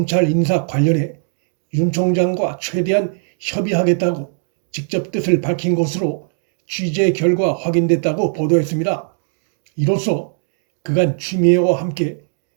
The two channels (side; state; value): left; silent; digital silence